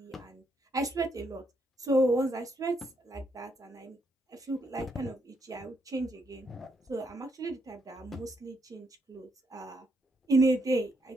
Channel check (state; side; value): normal; both; correlation 0.76